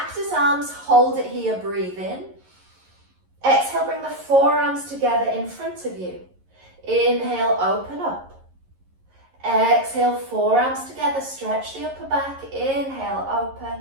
arms, hold it here, breathe in. Exhale, bring the forearms together in front of you. Inhale, open up. Exhale, forearms together, stretch the upper back. Inhale,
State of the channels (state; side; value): late; left; 11 ms